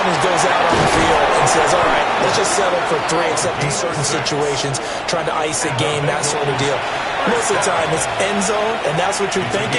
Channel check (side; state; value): both; identical; correlation 1.00